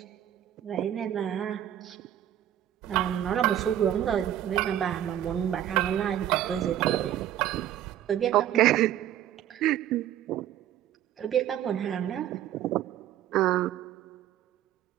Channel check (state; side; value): quieter; left; 11.6 dB